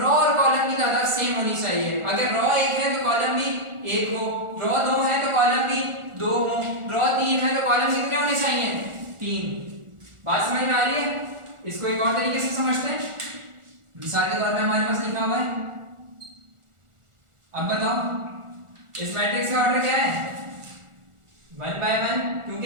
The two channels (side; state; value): left; late; 1.4 ms